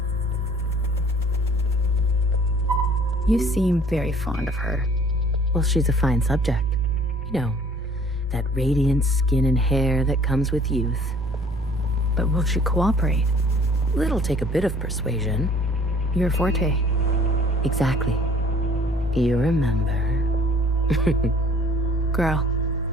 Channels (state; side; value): normal; both; correlation 0.54